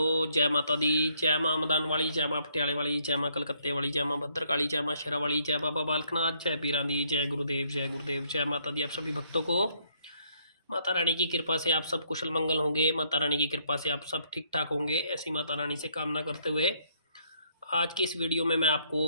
जय माता दी। जय माँ मदान वाली, जय माँ पटियाले वाली, जय माँ कलकत्ते वाली, जय माँ भद्रकाली, जय माँ शेरा वाली, जय बाबा बालकनाथ, जय पीरां दी, जय गुरुदेव, जय गुरुदेव। जय माता दी। आप सभी भक्तों को माता रानी की कृपा से आप सब कुशल मंगल होंगे। माता रानी की कृपा से आप सब ठीक ठाक होंगे, ऐसी माता रानी से कामना करते हुए आज की इस वीडियो में मैं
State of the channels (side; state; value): both; inverted; correlation -0.68